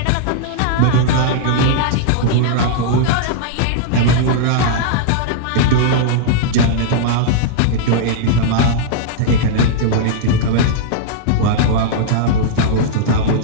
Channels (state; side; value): different; both; correlation -0.02